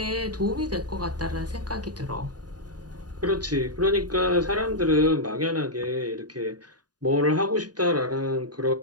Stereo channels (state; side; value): late; left; 0.69 ms